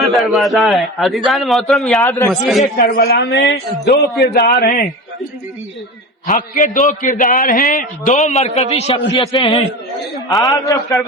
دروازہ ہے۔ عزیزان محترم یاد رکھیے کربلا میں دو کردار ہیں، حق کے دو کردار ہیں، دو مرکزی شخصیتیں ہیں۔ آپ جب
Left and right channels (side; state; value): both; normal; correlation 0.29